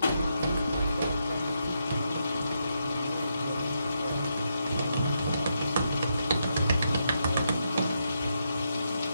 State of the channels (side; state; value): both; inverted; correlation -0.81